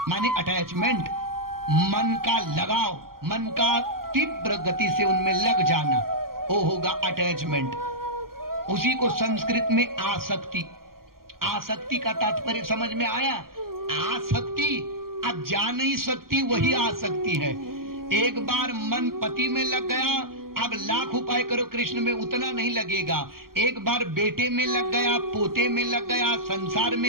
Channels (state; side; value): late; left; 0.92 ms